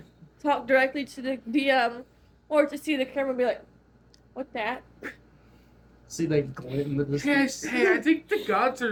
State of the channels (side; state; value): both; identical; correlation 1.00